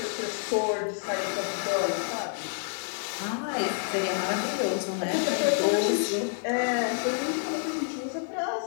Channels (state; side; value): silent; right; 59 dB below the other